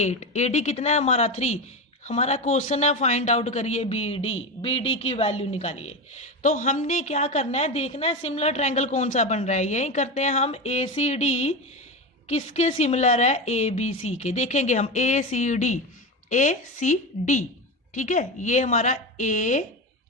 AD कितना है हमारा 3। हमारा क्वेश्चन है फाइंड आउट करिए BD की वैल्यू निकालिए। तो हमने क्या करना है, देखना है सिमिलर ट्रायंगल कौन सा बन रहा है। यही करते हैं हम, ACD किसके सिमिलर है, ABC के। देखेंगे हम ACD, ठीक है, ये हमारा ACD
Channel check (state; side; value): normal; both; correlation 0.20